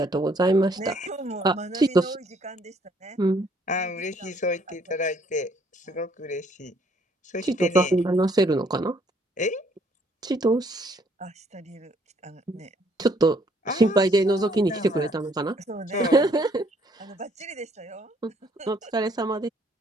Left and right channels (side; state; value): both; normal; correlation 0.65